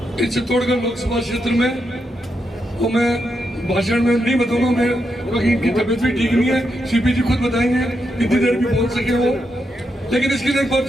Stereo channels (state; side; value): normal; both; correlation 0.83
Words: इस चित्तौड़गढ़ लोकसभा क्षेत्र में, वो मैं भाषण में नहीं बताऊंगा, मैं क्योंकि इनकी तबीयत भी ठीक नहीं है, सीपी जी खुद बताएंगे कितनी देर भी बोल सके वो, लेकिन इसके लिए एक बार